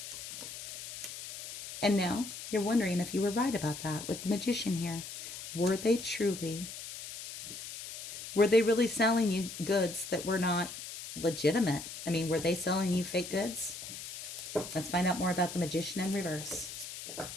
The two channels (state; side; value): noise; left; hiss, 10 dB below the sound